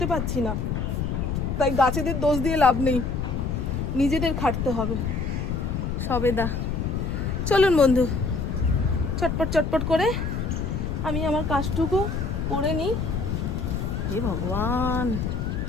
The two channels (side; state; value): left; noise; rumble, 2 dB below the sound